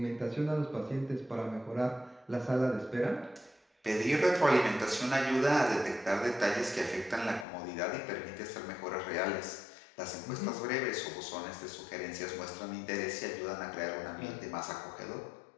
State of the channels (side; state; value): right; drops out; at 7.5 s